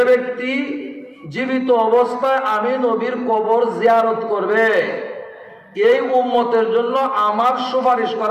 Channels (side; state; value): both; identical; correlation 1.00